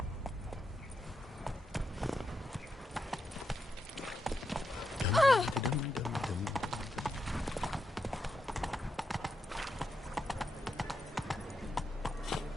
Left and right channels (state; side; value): normal; both; correlation 0.84